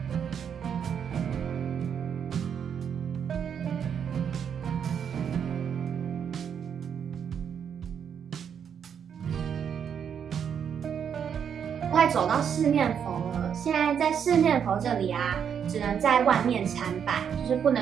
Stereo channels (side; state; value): left; quieter; 7.8 dB